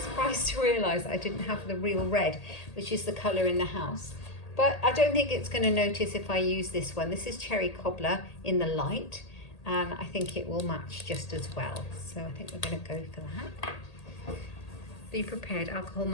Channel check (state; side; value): late; right; 1.8 ms